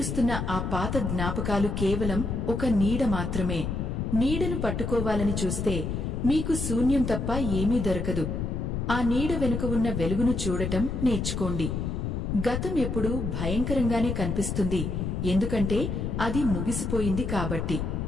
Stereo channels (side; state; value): left; noise; rumble, 2 dB below the sound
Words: ఆ పాత జ్ఞాపకాలు కేవలం ఒక నీడ మాత్రమే. నీడను పట్టుకోవాలని చూస్తే మీకు శూన్యం తప్ప ఏమీ దొరకదు. ఆ నీడ వెనుక ఉన్న వెలుగును చూడటం నేర్చుకోండి. గతం ఎప్పుడూ భయంకరంగానే కనిపిస్తుంది, ఎందుకంటే అది ముగిసిపోయింది కాబట్టి.